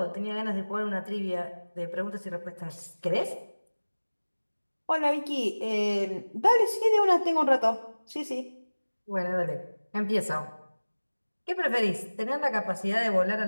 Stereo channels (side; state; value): both; inverted; correlation -1.00